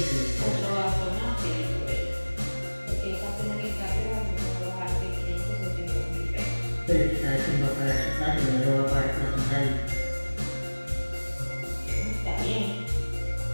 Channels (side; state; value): both; inverted; correlation -1.00